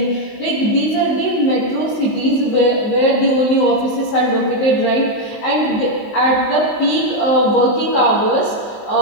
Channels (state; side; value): late; right; 19 ms